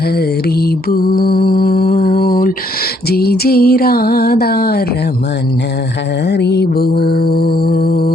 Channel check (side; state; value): both; normal; correlation 0.69